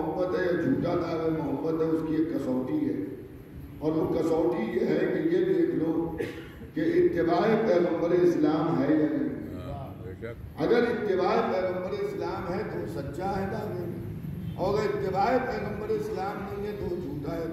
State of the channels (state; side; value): identical; both; correlation 1.00